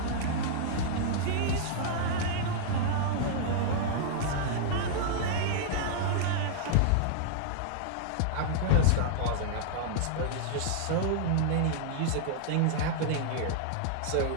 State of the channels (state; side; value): different; both; correlation -0.01